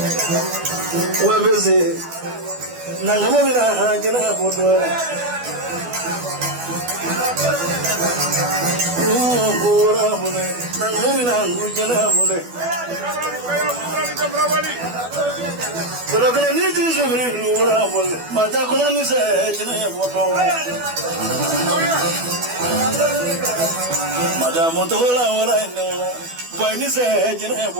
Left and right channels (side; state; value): left; late; 12 ms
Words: Wabese, Nangamina, Jina boto. Ura mola, Nangamina, Gujina boto. Bulakala niti sabri ura mola, Matakuna se jina boto. Madame Tola, what I know, when you say, you know,